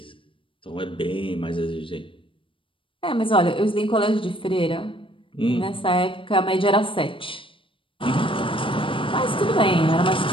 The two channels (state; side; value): late; right; 0.25 ms